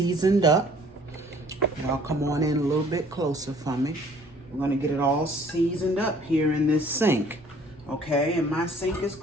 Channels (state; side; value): normal; both; correlation 0.56